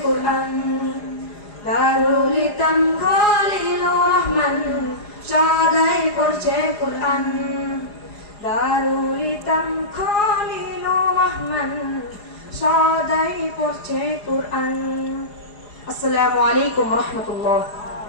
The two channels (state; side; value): late; right; 4.9 ms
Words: কোরআন। দারুল ইতাম খলিলুর রহমান সদাই পড়ছে কোরআন। দারুল ইতাম খলিলুর রহমান সদাই পড়ছে কোরআন। আসসালামু আলাইকুম রহমতুল্লাহ।